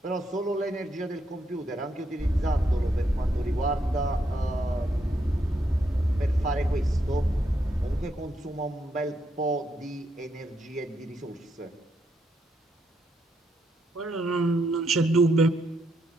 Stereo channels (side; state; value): both; normal; correlation 0.78